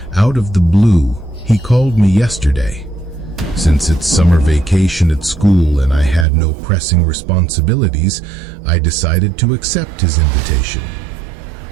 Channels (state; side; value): drops out; left; at 6.2 s